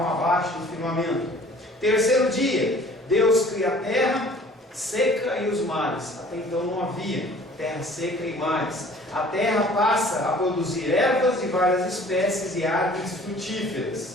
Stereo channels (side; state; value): both; normal; correlation 0.51